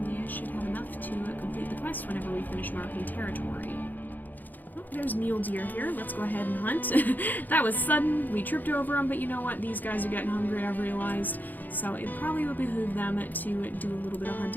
we should have enough to complete the quest whenever we finish marking territory. Oh, there's mule deer here. Let's go ahead and hunt. That was sudden. We tripped over them, but you know what? These guys are getting hungry, I've realized. So it probably would behoove them to do a little bit of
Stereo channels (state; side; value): late; right; 0.085 ms